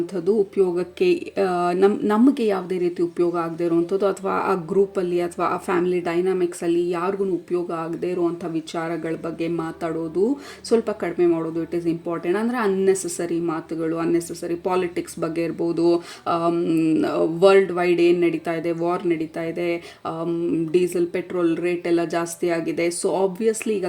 ಉಪಯೋಗಕ್ಕೆ ನಮಗೆ ಯಾವುದೇ ರೀತಿ ಉಪಯೋಗ ಆಗದೆ ಇರೋವಂಥದ್ದು, ಅಥವಾ ಆ ಗ್ರೂಪಲ್ಲಿ ಅಥವಾ ಆ ಫ್ಯಾಮಿಲಿ ಡೈನಾಮಿಕ್ಸಲ್ಲಿ ಯಾರಿಗೂ ಉಪಯೋಗ ಆಗದೆ ಇರುವಂಥ ವಿಚಾರಗಳ ಬಗ್ಗೆ ಮಾತಾಡೋದು ಸ್ವಲ್ಪ ಕಡಿಮೆ ಮಾಡೋದು. It is important. ಅಂದರೆ ಅನ್ನೆಸೆಸರಿ ಮಾತುಗಳು, ಅನ್ನೆಸೆಸರಿ ಪಾಲಿಟಿಕ್ಸ್ ಬಗ್ಗೆ ಇರ್ಬೋದು, ವರ್ಲ್ಡ್ ವೈಡ್ ಏನು ನಡೀತಾ ಇದೆ, ವಾರ್ ನಡೀತಾ ಇದೆ, ಡೀಸೆಲ್ ಪೆಟ್ರೋಲ್ ರೇಟ್ ಎಲ್ಲ ಜಾಸ್ತಿ ಆಗಿದೆ. ಸೊ ಆಬ್ವಿಯಸ್ಲಿ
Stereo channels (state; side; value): identical; both; correlation 1.00